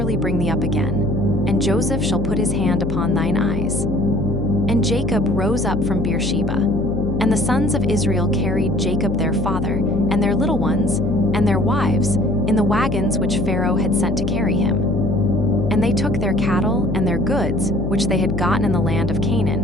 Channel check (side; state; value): left; noise; hum, 3 dB below the sound